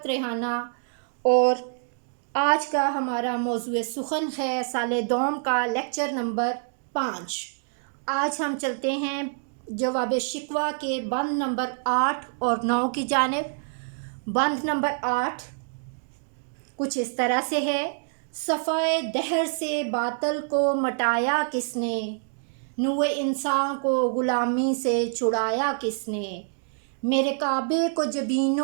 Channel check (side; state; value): left; silent; digital silence